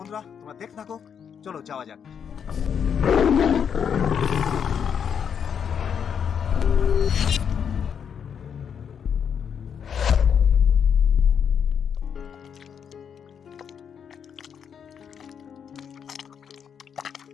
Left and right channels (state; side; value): quieter; right; 7.6 dB